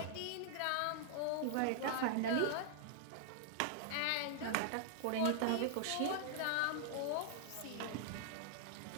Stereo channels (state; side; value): different; both; correlation -0.01